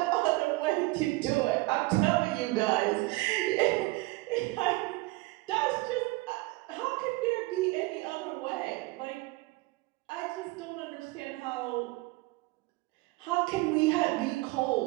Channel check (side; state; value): left; quieter; 22.6 dB